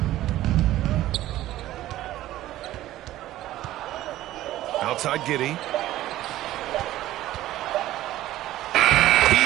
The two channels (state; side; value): quieter; left; 14.7 dB